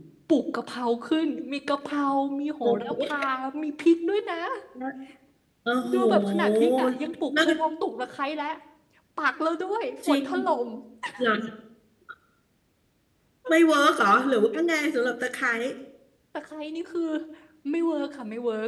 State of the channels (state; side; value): identical; both; correlation 1.00